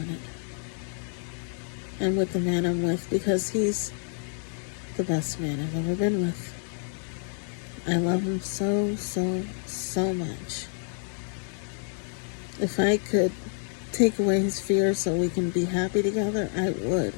And with the man I'm with, because he's the best man I've ever been with. I love him so, so, so much. If I could take away his fear so we can be happy together, I would.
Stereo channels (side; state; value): right; silent; 59 dB below the other